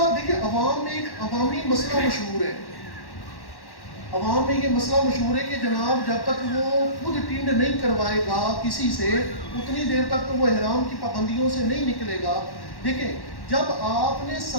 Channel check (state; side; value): late; right; 1.1 ms